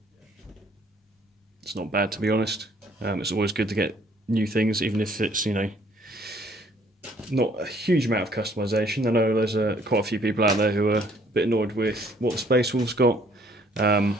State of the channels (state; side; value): normal; both; correlation 0.62